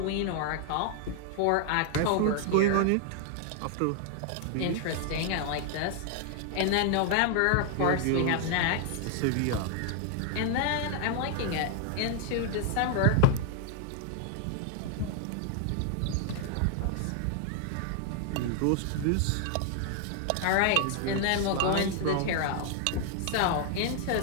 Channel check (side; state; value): both; different; correlation 0.00